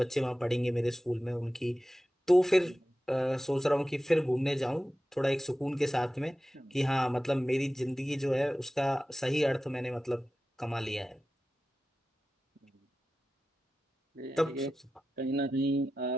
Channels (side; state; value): both; normal; correlation 0.94